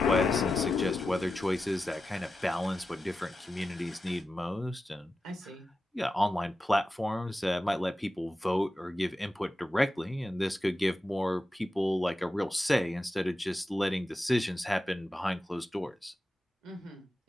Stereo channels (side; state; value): both; normal; correlation 0.92